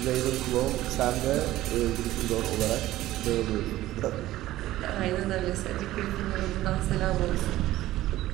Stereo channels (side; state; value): left; quieter; 15.4 dB